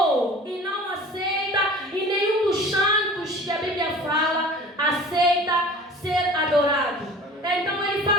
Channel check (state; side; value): normal; both; correlation 0.43